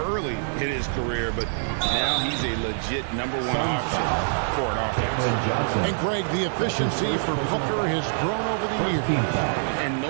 early in his career, but now he's a legit #1 option for an offense. And, Greg, the efficiency for Booker has grown over the years. And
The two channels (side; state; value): left; silent; 62 dB below the other